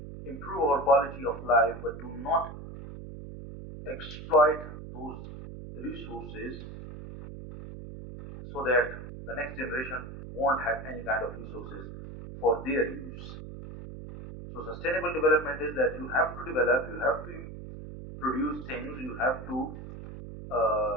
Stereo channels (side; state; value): right; noise; hum, 11 dB below the sound